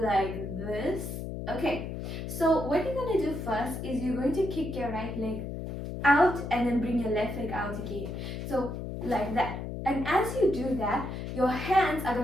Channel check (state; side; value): noise; left; hum, 6 dB below the sound